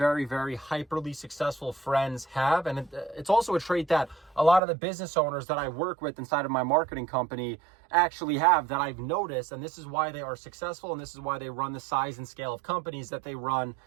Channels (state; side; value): drops out; left; at 4.6 s